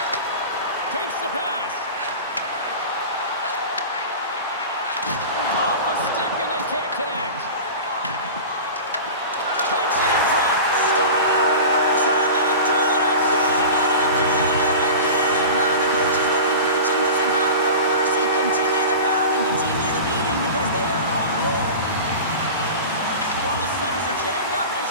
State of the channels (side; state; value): both; inverted; correlation -0.32